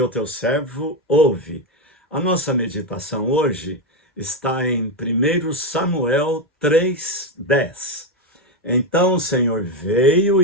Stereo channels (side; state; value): both; normal; correlation 0.10